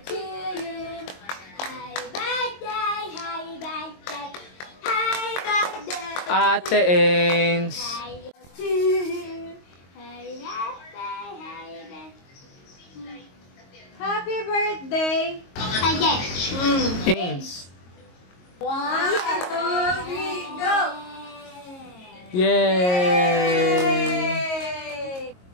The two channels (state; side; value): late; right; 22 ms